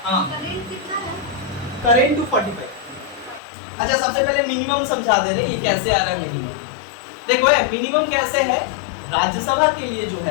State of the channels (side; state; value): right; drops out; at 3.4 s